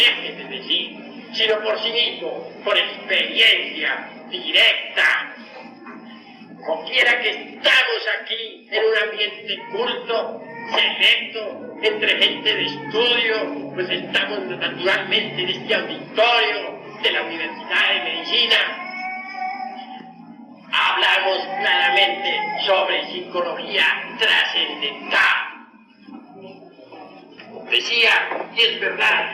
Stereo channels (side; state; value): both; identical; correlation 1.00